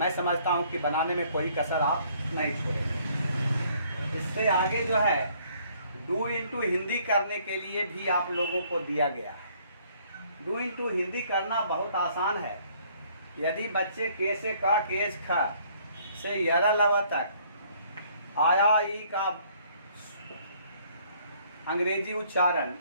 समझता हूं कि बनाने में कोई कसर आप नहीं छोड़ेंगे। इससे आगे जो है डू इंटू हिंदी करने के लिए भी आप लोगों को दिया गया है। डू इंटू हिंदी करना बहुत आसान है। यदि बच्चे के से का, केज ख से यरा लवा तक आया ई का अंग्रेजी उच्चारण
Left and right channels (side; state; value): both; inverted; correlation -0.62